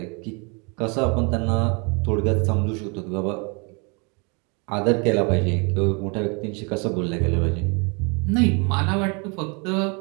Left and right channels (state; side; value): quieter; left; 32.7 dB